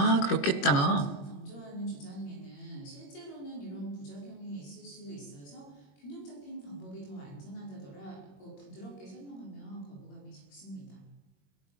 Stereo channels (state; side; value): late; right; 21 ms